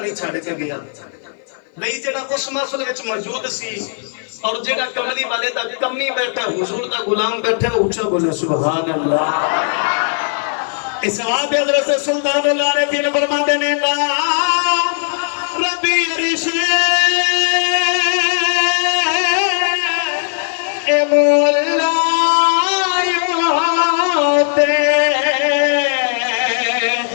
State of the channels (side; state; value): right; silent; 57 dB below the other